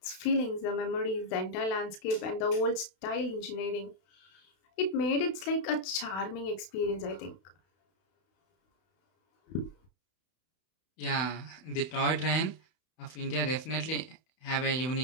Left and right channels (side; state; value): right; late; 32 ms